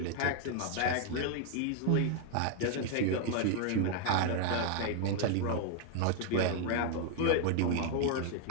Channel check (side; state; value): both; different; correlation 0.00